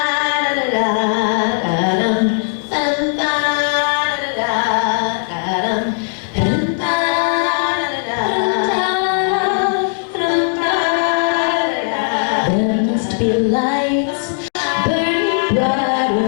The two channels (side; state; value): right; silent; digital silence